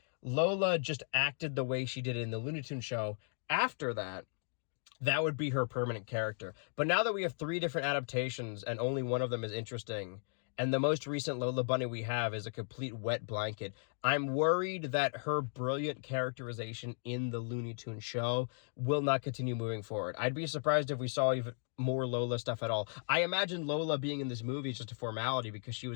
Lola just acted the way she did in the Looney Tunes show, after that, that would be her permanent character. But now that we have 3 different adaptations and only one of them is interesting, and the most recent Lola Bunny we have is a complete wet blanket, I'm worried that her brilliant characterization in the Looney Tunes show will not continue moving forward. I'd be surprised if we saw even more Lola stuff at all. I imagine Lola being in this movie is just a formality because she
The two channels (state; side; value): silent; right; digital silence